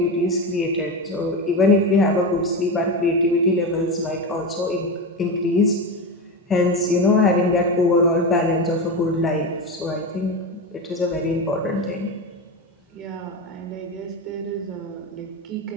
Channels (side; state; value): both; normal; correlation 0.19